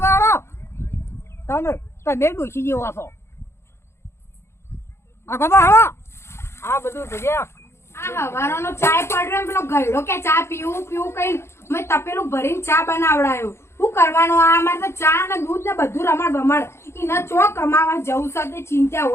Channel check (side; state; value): right; late; 0.13 ms